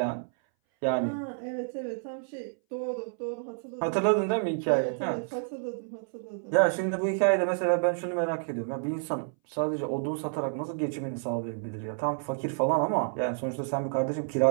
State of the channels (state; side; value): silent; left; 58 dB below the other